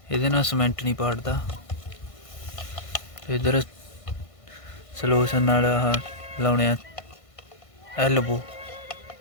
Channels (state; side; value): late; right; 1.5 ms